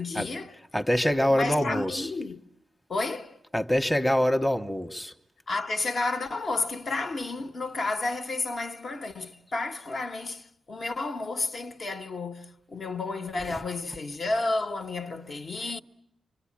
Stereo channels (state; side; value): normal; both; correlation 0.94